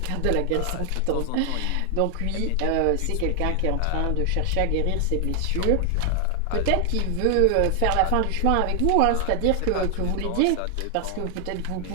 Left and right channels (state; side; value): different; both; correlation 0.00